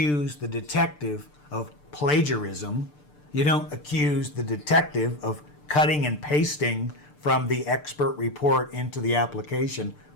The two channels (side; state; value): right; late; 6.8 ms